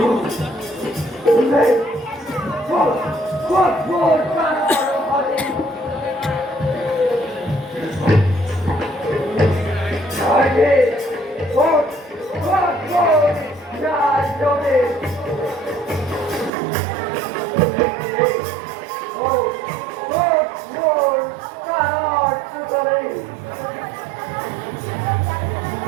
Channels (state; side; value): drops out; left; at 16.5 s